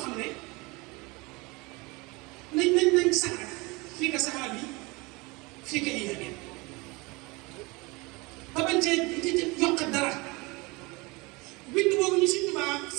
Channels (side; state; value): left; quieter; 25.3 dB